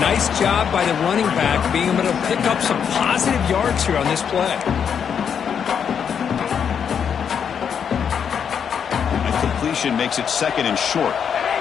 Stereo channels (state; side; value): quieter; right; 7.5 dB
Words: nice job by the running back being able to pick up some positive yards here on this play. And completion makes it 2nd and short.